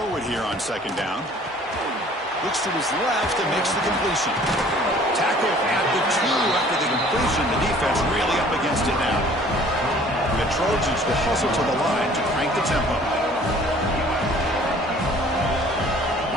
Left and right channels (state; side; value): normal; both; correlation 0.53